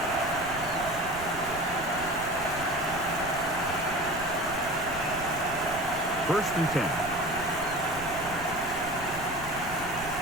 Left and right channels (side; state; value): right; noise; rumble, 13 dB below the sound